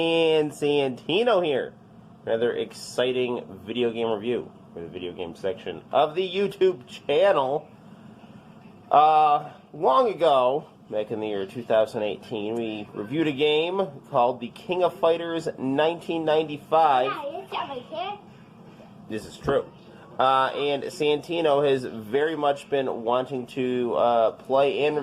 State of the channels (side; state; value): both; identical; correlation 1.00